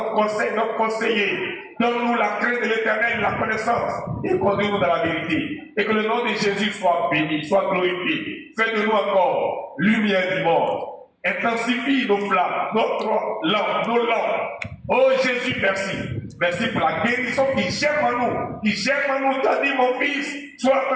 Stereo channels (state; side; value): identical; both; correlation 1.00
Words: conseil, notre conseiller. Donne-nous la crainte de l'Éternel, la connaissance, et conduis-nous dans la vérité. Et que le nom de Jésus soit béni, soit glorifié. Fais de nous encore lumière du monde. Intensifie nos flammes, notre lampe, nos lampes. Oh Jésus, merci. Merci pour la guérison qui germe en nous. Qui germe en nous. Tu as dit, mon fils, sois